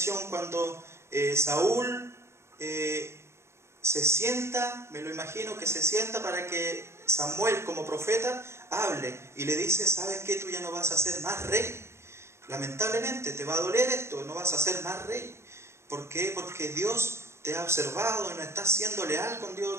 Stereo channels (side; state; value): left; late; 0.13 ms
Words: cuando Saúl se sienta, me lo imagino que se sienta para que Samuel como profeta hable y le dice, ¿sabes qué? Tú ya no vas a ser más rey. Lamentablemente te va a doler esto, no vas a ser más rey. ¿Por qué? Porque Dios te ha observado y no estás siendo leal con